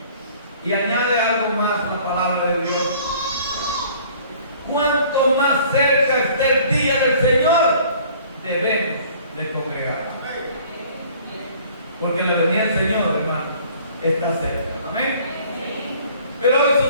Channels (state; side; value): inverted; both; correlation -0.53